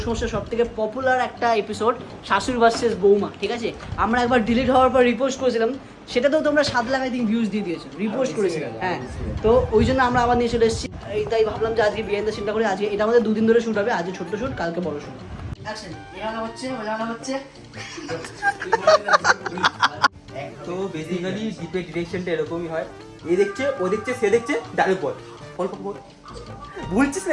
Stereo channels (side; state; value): both; identical; correlation 1.00